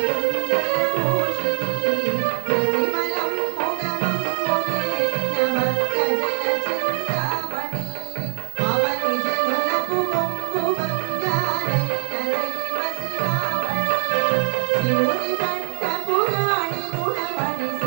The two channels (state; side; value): quieter; left; 37.7 dB